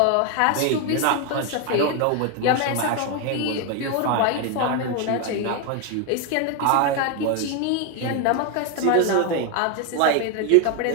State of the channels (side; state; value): both; different; correlation 0.01